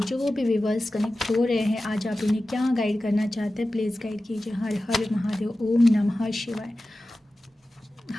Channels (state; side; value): normal; both; correlation 0.95